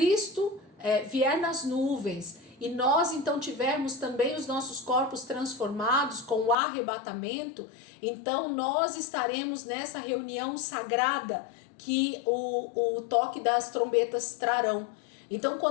vier nas nuvens e nós então tivermos também os nossos corpos transformados com o arrebatamento, então nós estaremos nessa reunião sagrada que o toque das trombetas trarão. Então,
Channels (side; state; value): right; drops out; at 6.6 s